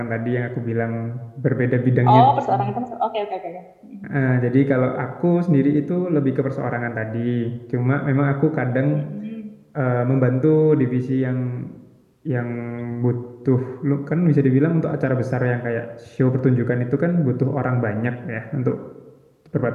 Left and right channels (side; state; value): both; identical; correlation 1.00